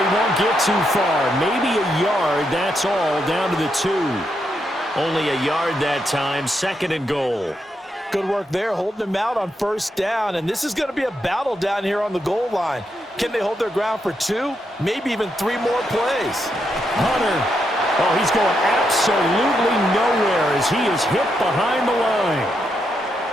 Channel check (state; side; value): normal; both; correlation 0.81